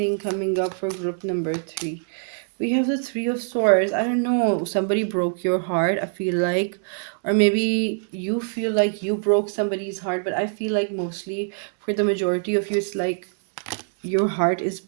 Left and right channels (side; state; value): left; silent; digital silence